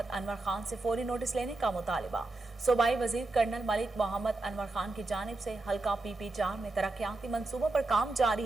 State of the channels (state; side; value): quieter; left; 3.1 dB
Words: अनवर खान से फौरी नोटिस लेने का मुतालिबा। सूबाई वजीर कर्नल मलिक मोहम्मद अनवर खान की जानिब से हल्का PP4 में तरक्याती मंसूबों पर काम